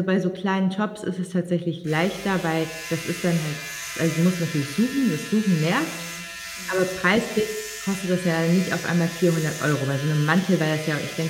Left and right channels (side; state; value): both; identical; correlation 1.00